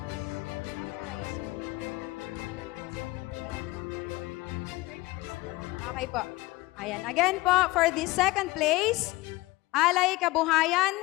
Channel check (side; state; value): right; quieter; 20.5 dB